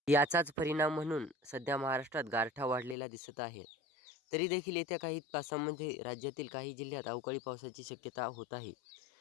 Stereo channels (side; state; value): right; drops out; at 3.0 s